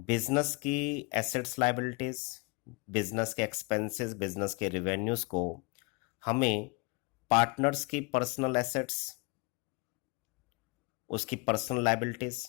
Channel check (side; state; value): right; quieter; 29.6 dB